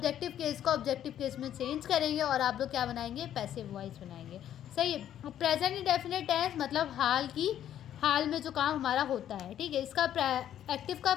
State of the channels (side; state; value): right; quieter; 10.9 dB